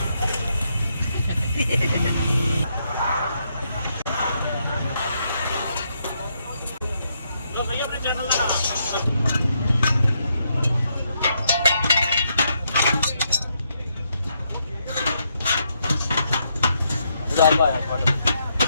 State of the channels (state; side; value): inverted; both; correlation -0.78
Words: ਲੋ ਸਹੀ ਆਪਣੇ ਚੈਨਲ ਦਾ ਨਾਮ उधार पाया फोटो